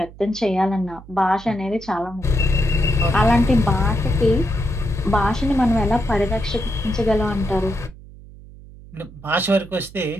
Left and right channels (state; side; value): noise; right; hum, 19 dB below the sound